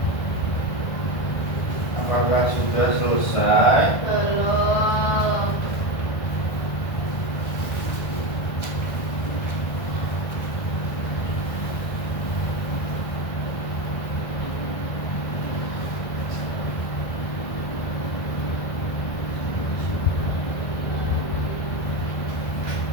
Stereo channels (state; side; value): late; right; 1.6 ms